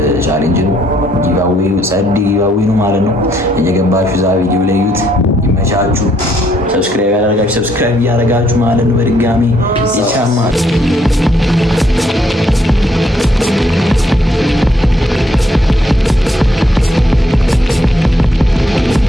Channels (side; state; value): both; normal; correlation 0.71